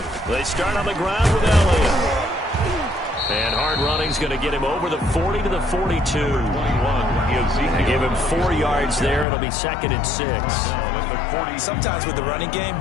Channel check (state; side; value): drops out; right; at 9.2 s